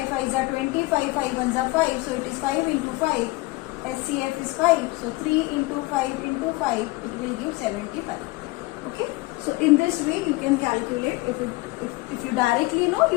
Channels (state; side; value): quieter; right; 22.1 dB